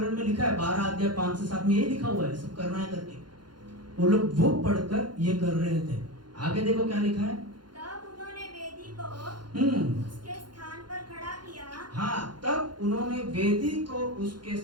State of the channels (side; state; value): left; late; 0.71 ms